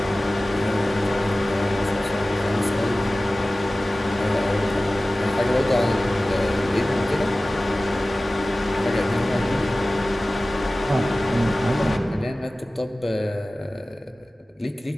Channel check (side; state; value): both; normal; correlation 0.97